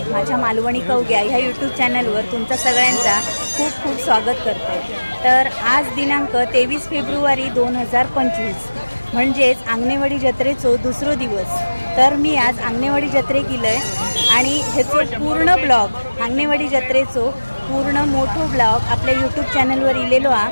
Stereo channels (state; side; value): inverted; both; correlation -1.00